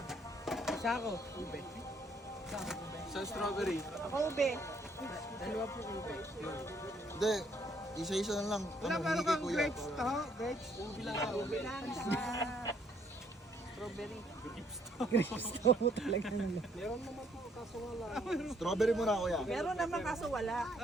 Isa ako. Ube. Sa strawberry. Ako ube. Dalawa po ube. Hindi. Isa-isa na lang. Wala Ano, meron hindi kay kang kuya. grapes to? Grapes? Ube lang ka. Ube lang. Strawberry. Grapes to mo talaga naman. Meron naman po, kaso wala. Strawberry muna kuya. Meron naman kaso wala.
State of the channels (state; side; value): normal; both; correlation 0.67